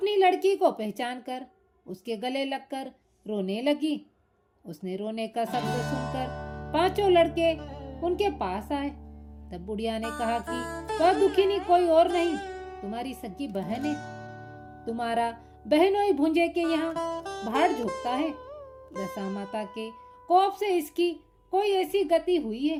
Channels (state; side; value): identical; both; correlation 1.00